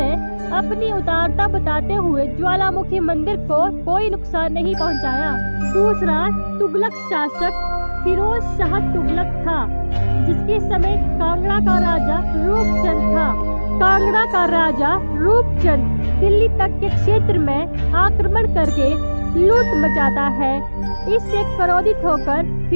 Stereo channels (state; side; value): inverted; both; correlation -1.00